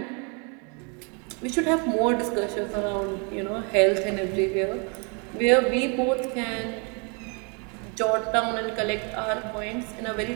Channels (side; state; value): left; quieter; 35.3 dB